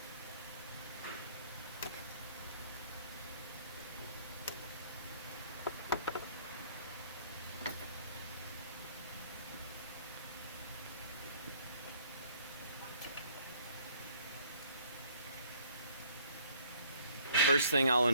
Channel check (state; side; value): inverted; both; correlation -0.60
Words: The first thing I'll